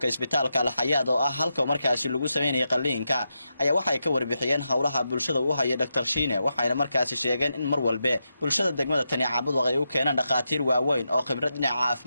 isbitaalka Al-Hayaat oo ah halka markaasi lagu sameeyay qalliinka ayaa waxay ka warbixiyeen hawlaha bulshada uu hayo Dr. Shiine waxayna markaasi sheegeen in mar walba bulshada degmada Tani Caabudwaaq ay u keenaan dhaqaatiir waaweyn oo khibrad dhinaca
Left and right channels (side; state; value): both; inverted; correlation -0.86